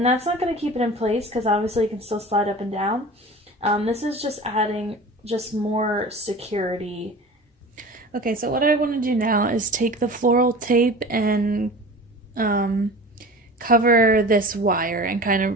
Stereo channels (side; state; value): both; normal; correlation 0.37